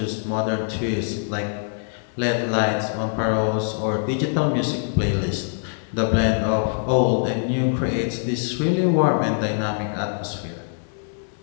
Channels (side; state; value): right; silent; digital silence